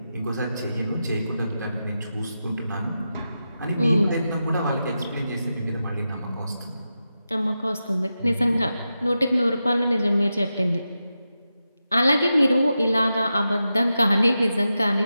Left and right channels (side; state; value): both; inverted; correlation -0.90